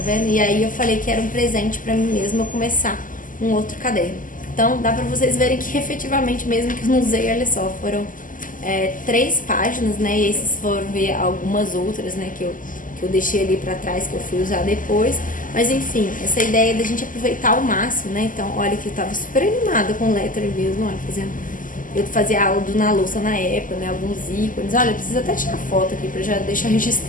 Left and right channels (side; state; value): right; late; 0.38 ms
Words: vendo? E aí eu falei que era um presente pra mim mesma eu começar um outro caderno. Então dá pra vocês verem que efetivamente, mesmo que eu não usei, olha só, foram 3 páginas, né? E esses foram ver algumas outras, né? Que eu deixei ali pra trás, que eu fui usar depois. Mas enfim, essa ideia da gente aproveitar ao máximo, né? Então, olha que eu tava super animada com o lettering mesmo, olha, fazendo... Eu fazia aula do Na Louça na época, né? Alguns ícones. Olha, eu preciso até tirar foto aqui pra já deixar